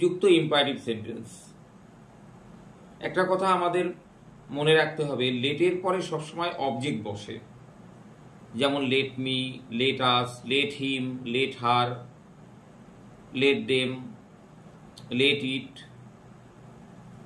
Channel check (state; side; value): identical; both; correlation 1.00